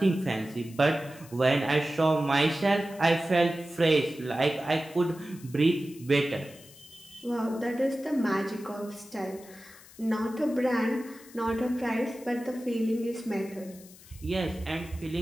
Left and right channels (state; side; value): noise; left; hiss, 21 dB below the sound